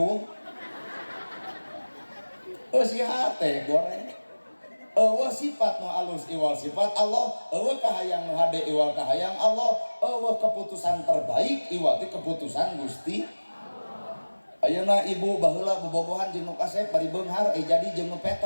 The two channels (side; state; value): both; inverted; correlation -1.00